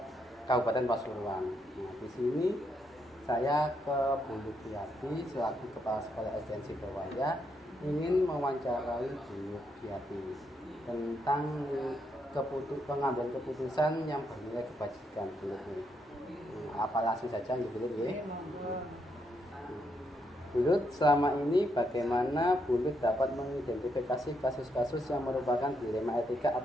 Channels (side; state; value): both; normal; correlation 0.78